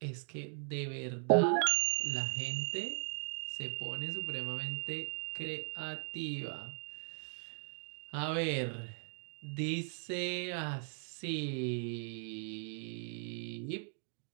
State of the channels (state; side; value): silent; left; 52 dB below the other